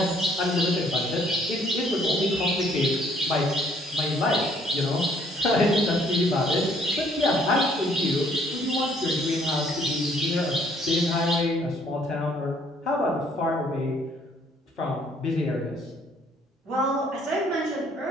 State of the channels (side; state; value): both; normal; correlation 0.63